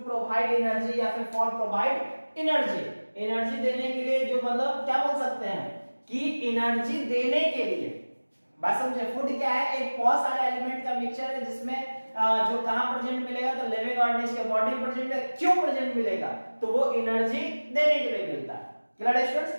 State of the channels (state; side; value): inverted; both; correlation -1.00